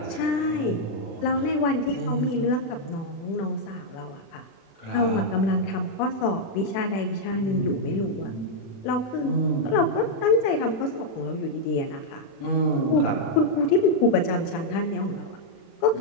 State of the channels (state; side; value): late; right; 36 ms